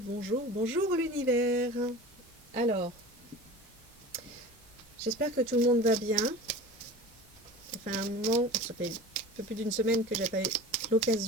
bonjour, bonjour l'univers. Alors, j'espère que tout le monde va bien. Ça fait un moment, ça fait un peu plus d'une semaine que j'ai pas eu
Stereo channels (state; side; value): normal; both; correlation 0.36